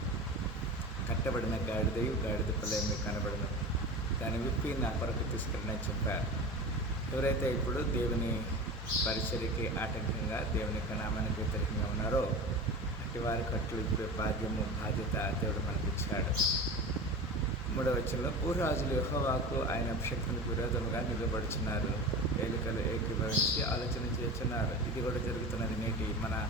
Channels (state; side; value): normal; both; correlation 0.31